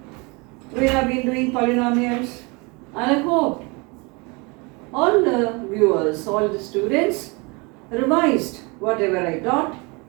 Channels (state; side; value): quieter; left; 28.4 dB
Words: We have been doing polynomials and I hope all the viewers, all the students revised whatever I taught